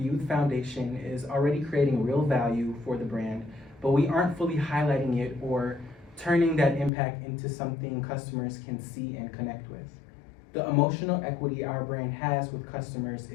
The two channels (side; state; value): right; drops out; at 6.9 s